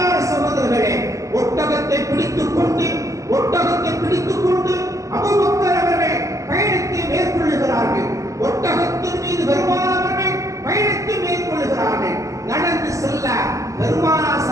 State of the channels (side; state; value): left; late; 0.16 ms